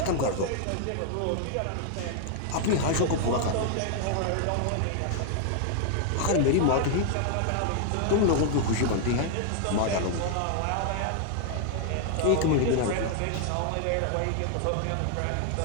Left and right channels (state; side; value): different; both; correlation 0.00